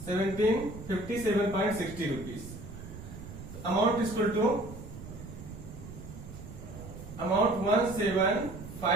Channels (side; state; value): right; noise; rumble, 12 dB below the sound